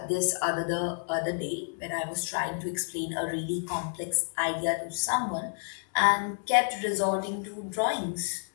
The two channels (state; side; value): silent; right; 58 dB below the other